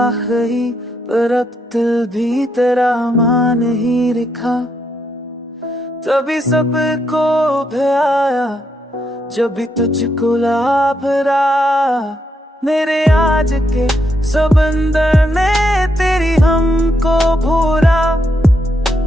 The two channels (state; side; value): normal; both; correlation 0.79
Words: पर अब दिल भी तेरा मान ही लिखा, तभी सबको भयाया जब भी तुझको लाभरा, मेरे आज के समंदर ने तेरी हमको भूरा,